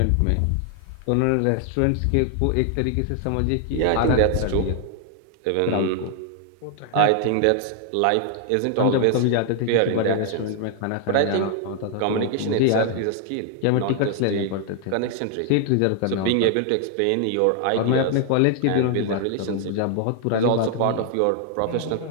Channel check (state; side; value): different; both; correlation 0.00